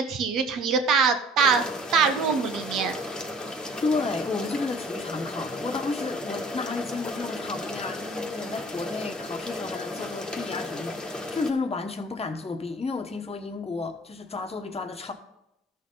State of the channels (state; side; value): normal; both; correlation 0.51